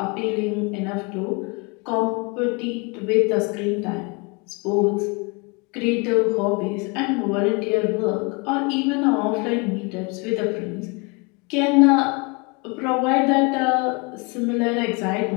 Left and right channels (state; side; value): quieter; right; 30.0 dB